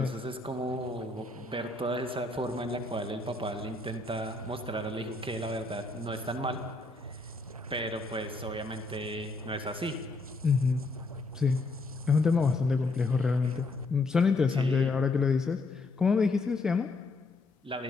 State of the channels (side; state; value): right; quieter; 3.3 dB